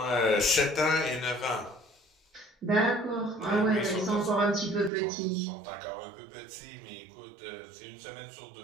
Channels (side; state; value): left; drops out; at 4.9 s